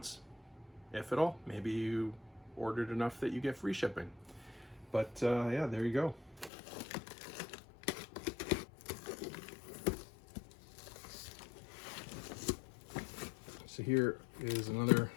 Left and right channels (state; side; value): drops out; right; at 6.5 s